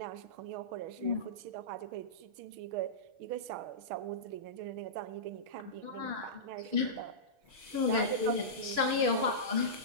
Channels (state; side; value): late; left; 6.5 ms